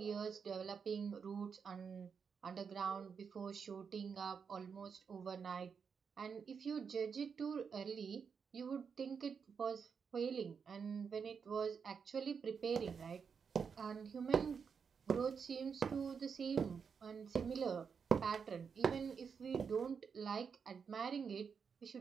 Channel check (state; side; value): quieter; left; 6.2 dB